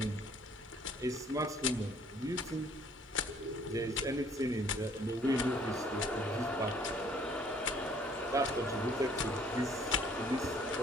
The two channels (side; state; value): both; normal; correlation 0.59